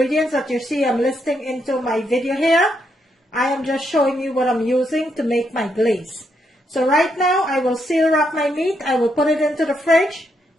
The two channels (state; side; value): normal; both; correlation 0.78